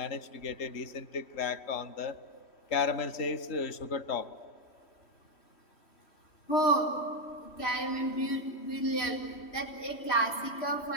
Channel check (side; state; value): right; late; 3.1 ms